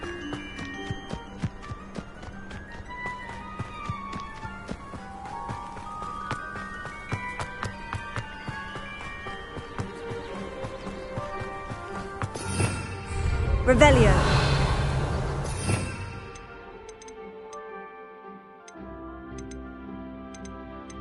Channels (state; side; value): identical; both; correlation 1.00